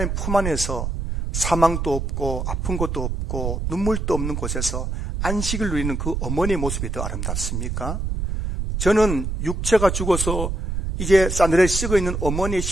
품 안에서 사망도 없고 아픈 것도 없고 눈물도 없는 곳에서 안식을 누리는 그 어머니의 모습이 더 아름답습니까? 저는 육체가 죽어서 이제 싸늘해 썩어 있는 어머니의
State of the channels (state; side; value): noise; right; rumble, 2 dB below the sound